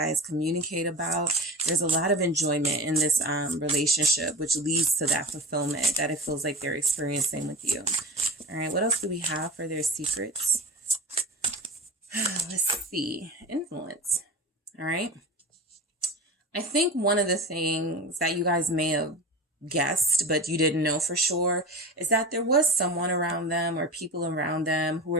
communicate about. There's a lot of enjoyment in this relationship, which leads to that fulfillment that it feels like they're experiencing with you. All right. What else do we have for their secrets? Let's see. Influence. All right. I think one of the things that you guys may have guessed, but you didn't know for sure, is that there was someone around them or people around them who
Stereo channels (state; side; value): normal; both; correlation 0.30